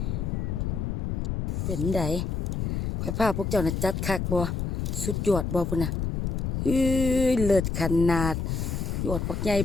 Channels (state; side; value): noise; left; rumble, 1 dB below the sound